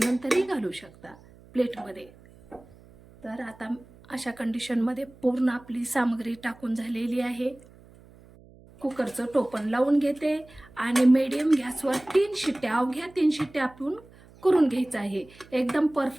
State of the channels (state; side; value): noise; right; hum, 24 dB below the sound